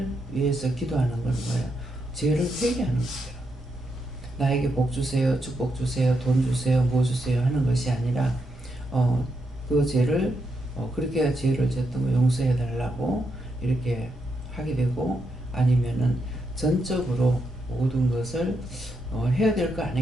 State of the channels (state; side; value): normal; both; correlation 0.82